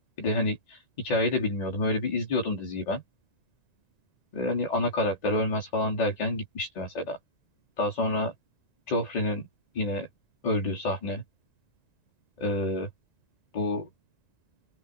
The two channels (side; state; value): right; late; 1.9 ms